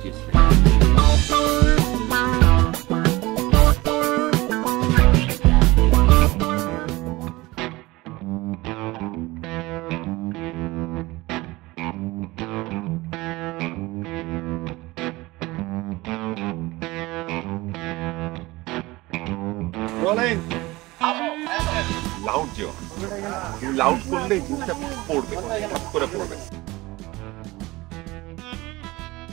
রোলিং লাউড দিও, লাউড করলে জিনিসটা পড়বে, হট করে পড়বে।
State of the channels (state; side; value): quieter; left; 20.7 dB